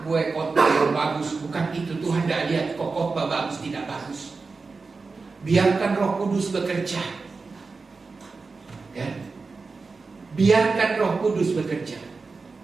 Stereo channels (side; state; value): left; quieter; 4.2 dB